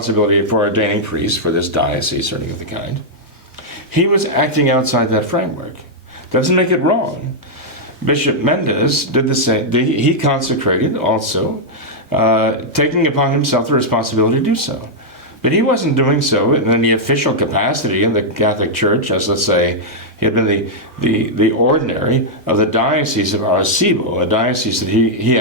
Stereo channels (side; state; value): both; normal; correlation -0.05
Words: for ordaining priests for this diocese or anything of the kind. He was acting outside that framework. Doesn't make it wrong. Bishop Mendez did the same. He consecrated also, taking upon himself the responsibility to do so. But he wasn't doing so in any official capacity in the Catholic Church, as, let's say, he had been the ordinary of the Diocese of Arecibo, a diocese that he